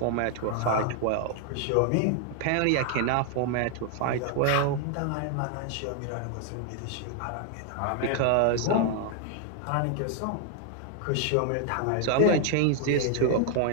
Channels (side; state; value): both; different; correlation 0.00